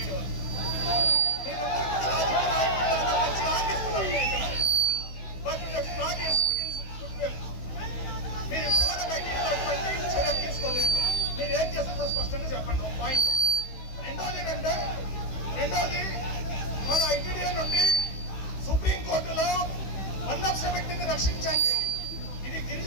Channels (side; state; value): right; late; 16 ms